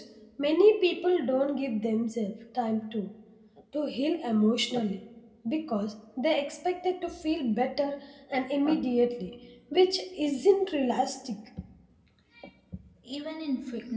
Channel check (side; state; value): both; identical; correlation 1.00